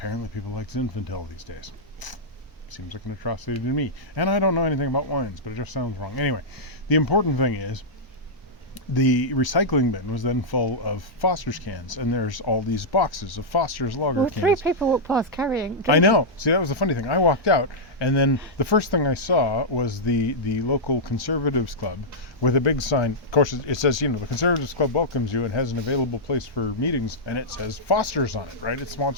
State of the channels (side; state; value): both; normal; correlation -0.09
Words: people like Zinfandel these days. Seems like an atrocity to me. And I don't know anything about wines, but it just sounds wrong. Anyway, the important thing is the recycling bin was then full of Foster's cans, and there's all these boxes of Foster's lager Well, cans. 3 people walked past carrying. I know. See, that was the funny thing. I walked out, and then the first thing I saw was the local Conservatives Club with a big sign. Of course, it says, the Conservatives Club welcomes you and has an available place for meetings, and it says Foster's on it, right? It's